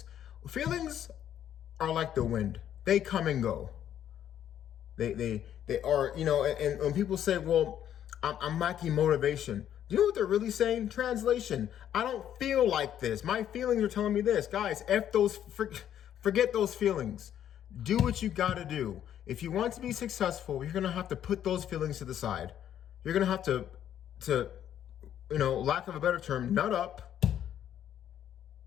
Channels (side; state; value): right; quieter; 10.4 dB